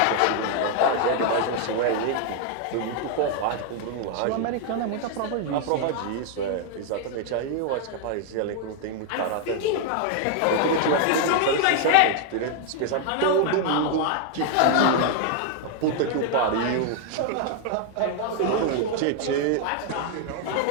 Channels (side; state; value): both; different; correlation 0.00